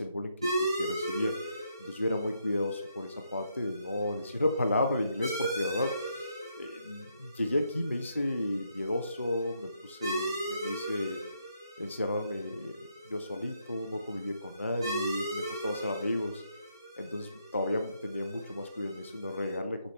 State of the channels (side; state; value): both; inverted; correlation -0.77